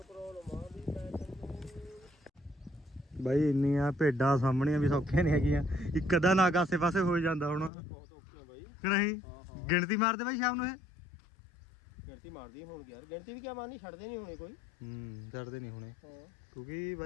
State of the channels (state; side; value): drops out; right; at 7.7 s